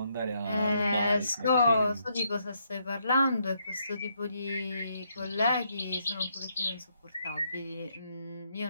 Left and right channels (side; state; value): both; inverted; correlation -0.75